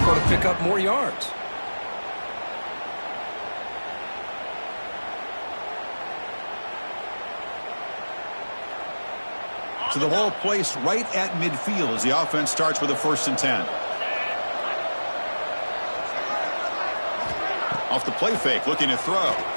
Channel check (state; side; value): inverted; both; correlation -1.00